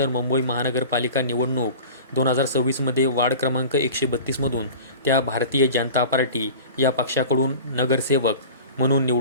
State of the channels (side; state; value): both; inverted; correlation -0.38